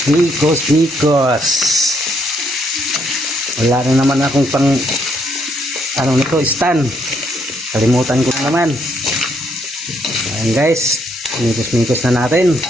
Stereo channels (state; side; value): normal; both; correlation 0.72